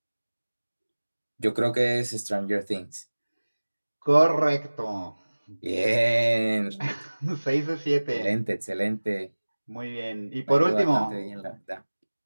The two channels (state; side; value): inverted; both; correlation -1.00